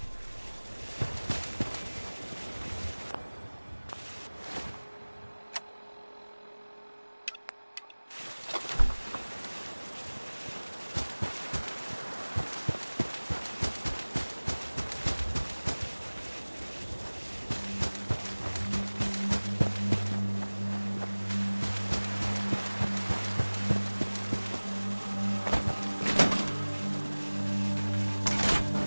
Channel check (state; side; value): inverted; both; correlation -1.00